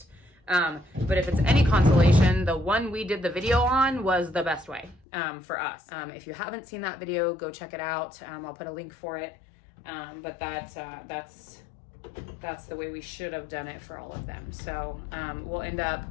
But if it's any consolation, the one we did the video on was the best way for us. If you haven't seen that video, go check it out. I'll put a link for it. But that's the way we should have done it for all of them. So we'll end up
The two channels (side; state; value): right; drops out; at 5.0 s